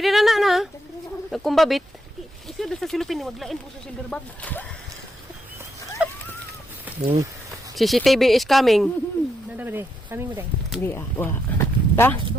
na na. Nagkumbabit. Isa doon sa silupin ni maglain po sa silver bag. CCTV is coming. Nada ba de? Kami mo de. Hindi ah. Wa. Ta?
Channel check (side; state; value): both; normal; correlation 0.80